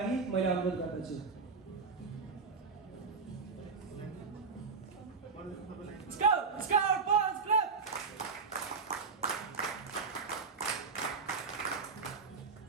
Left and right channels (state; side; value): quieter; left; 4.9 dB